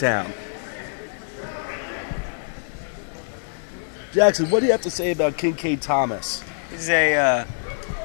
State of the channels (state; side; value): silent; right; digital silence